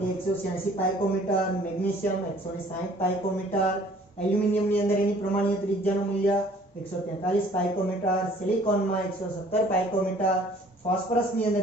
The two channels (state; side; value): normal; both; correlation 0.55